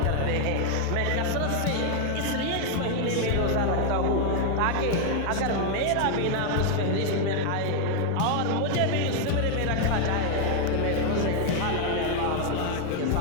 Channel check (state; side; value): different; both; correlation 0.01